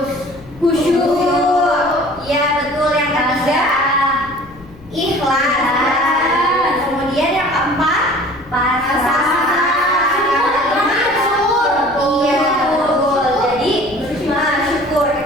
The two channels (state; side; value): noise; left; rumble, 23 dB below the sound